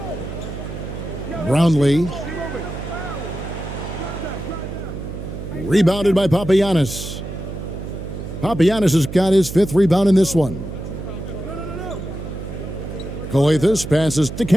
Brownlee. Rebounded by Papagiannis. Papagiannis has got his 5th rebound in this one. Calathes passes to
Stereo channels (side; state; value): right; noise; hum, 8 dB below the sound